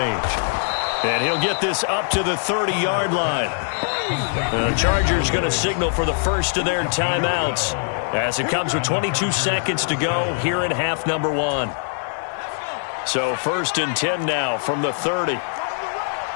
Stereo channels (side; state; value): right; silent; digital silence